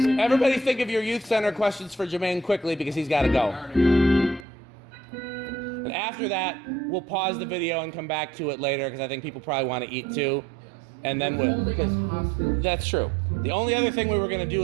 everybody think of your youth center questions for Jermaine quickly because he's got to go. And after that, we'll pause the video and come back to it later because I think people probably want to eat too. And then that's true. The only other thing we were going to do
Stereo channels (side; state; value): left; drops out; at 4.5 s